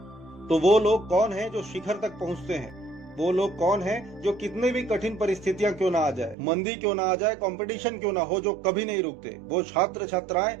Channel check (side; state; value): left; drops out; at 6.4 s